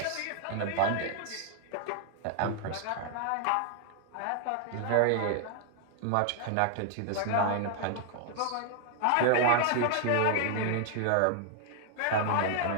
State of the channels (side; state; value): both; different; correlation 0.00